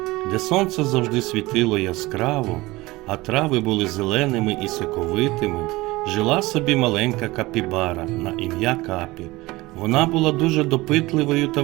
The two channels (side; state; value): left; quieter; 20.6 dB